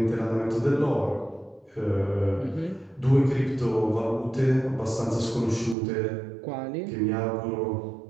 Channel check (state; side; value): drops out; left; at 5.8 s